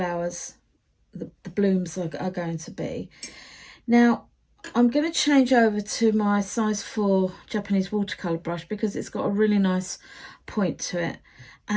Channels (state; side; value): identical; both; correlation 1.00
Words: the blooms are going to be. Now I'm going to change over to my size 4 Japanese watercolour brush because it's got a really nice point to it.